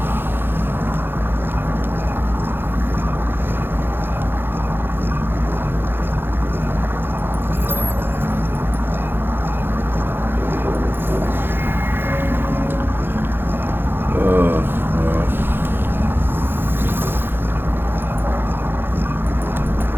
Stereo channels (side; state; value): left; late; 0.10 ms